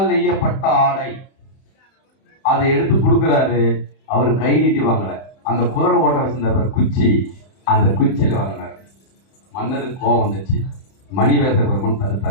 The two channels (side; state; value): right; late; 31 ms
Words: நெய்யப்பட்ட ஆடை. அதை எடுத்து கொடுக்கிறாரு. அவர் கை நீட்டி வாங்கல. அந்த குதிரை ஓட்ட வச்சிருந்த குச்சி, அந்த குச்சியில வாங்கினாரு. மன்னருக்கு கோபம் வந்துச்சு. மணிவாசக பெருமான்